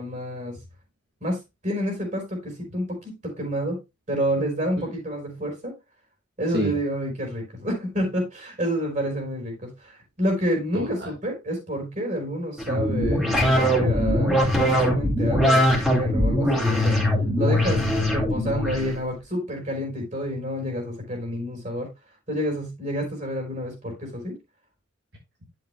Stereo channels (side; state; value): both; normal; correlation 0.61